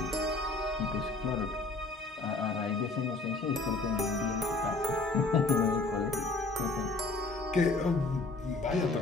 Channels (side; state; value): right; quieter; 3.4 dB